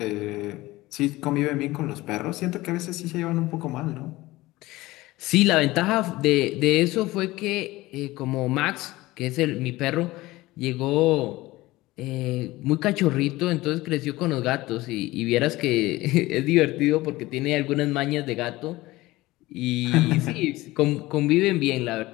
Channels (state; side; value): quieter; right; 18.9 dB